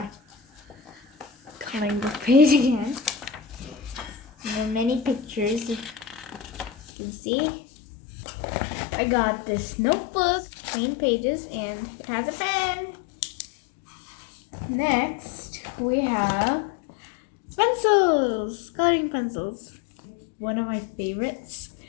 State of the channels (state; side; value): drops out; right; at 6.8 s